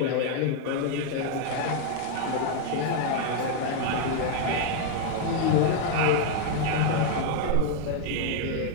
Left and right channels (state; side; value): different; both; correlation 0.00